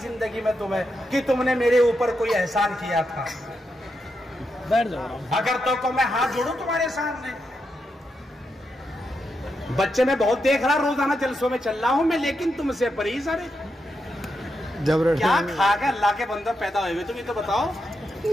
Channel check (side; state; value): both; normal; correlation 0.84